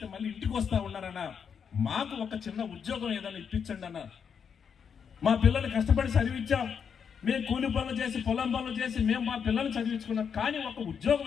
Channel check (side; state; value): right; quieter; 7.0 dB